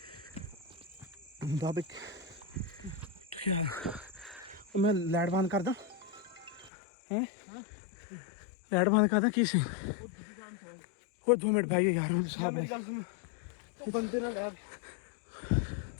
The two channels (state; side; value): drops out; right; at 6.7 s